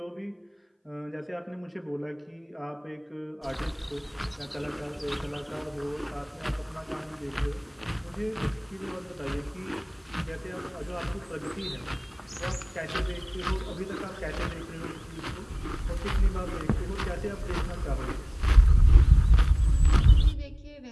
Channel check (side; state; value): both; identical; correlation 1.00